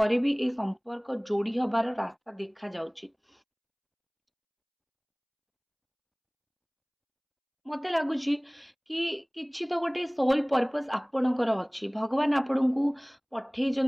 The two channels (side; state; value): both; identical; correlation 1.00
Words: भी ए संपर्क जोड़ी हबार रास्ता देखा जाउची। मत लगुच कि किछि तो गोटे सोल पर्पस आपणकर अच्छी भगवान आपण को